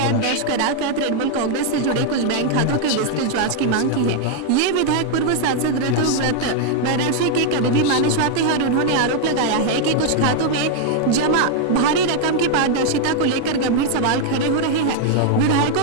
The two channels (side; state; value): both; different; correlation 0.00